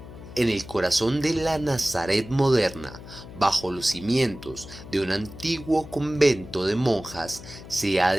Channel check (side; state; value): left; noise; hum, 15 dB below the sound